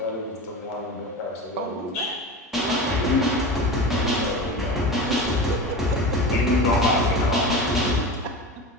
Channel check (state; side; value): normal; both; correlation 0.28